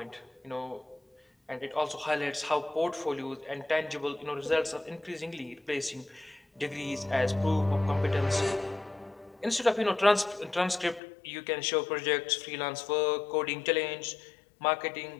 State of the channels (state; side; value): drops out; right; at 11.0 s